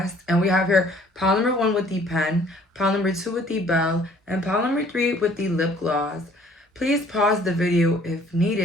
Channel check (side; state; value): both; normal; correlation 0.57